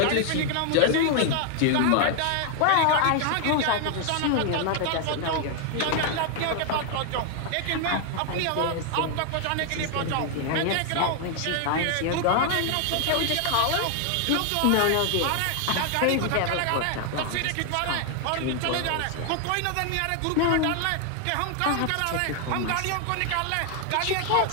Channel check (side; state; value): both; different; correlation 0.00